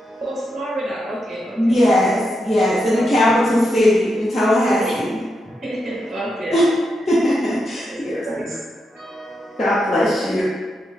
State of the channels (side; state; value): both; normal; correlation 0.84